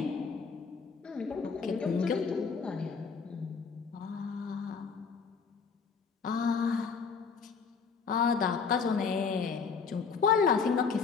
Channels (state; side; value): quieter; right; 5.6 dB